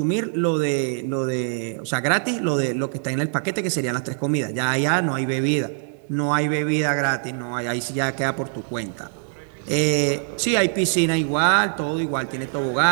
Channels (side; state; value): left; silent; digital silence